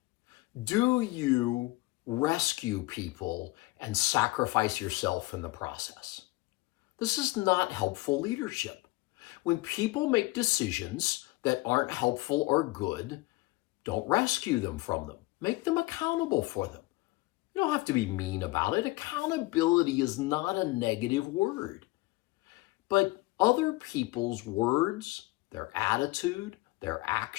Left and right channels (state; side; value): quieter; right; 21.8 dB